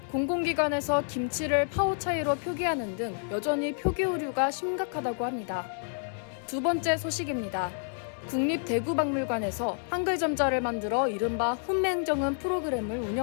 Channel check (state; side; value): silent; right; 58 dB below the other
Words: 공공기관에서 김치를 파워 차이로 표기하는 등 여전히 표기 오류가 심각하다고 합니다. 두 번째 소식입니다. 국립대구박물관에서 한글 점자를 만들어 이른바 훈맹정음 프로그램을